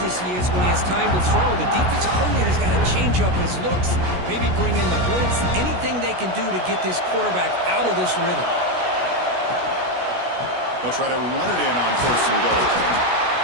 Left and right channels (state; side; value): late; left; 16 ms